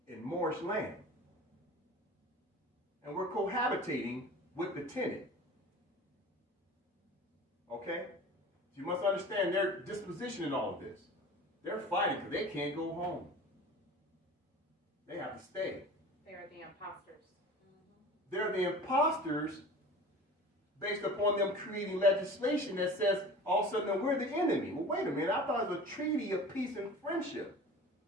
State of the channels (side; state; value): both; normal; correlation 0.38